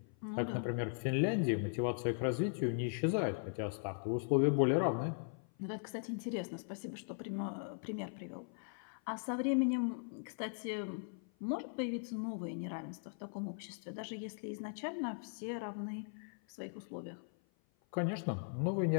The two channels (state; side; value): silent; right; 52 dB below the other